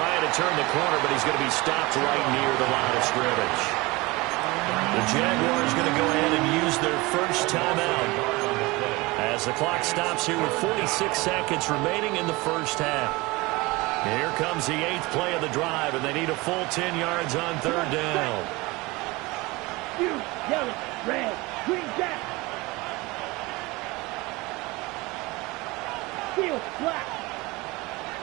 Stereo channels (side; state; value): left; quieter; 23.0 dB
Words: to turn the corner, but he's going to be stopped right near the line of scrimmage. The Jaguars going to go ahead and use their first timeout as the clock stops here with 46 seconds remaining in the first half. Here comes the 8th play of the drive, and they need a full 10 yards on 3rd down. You, yellow, red, green, jack. Steel, black.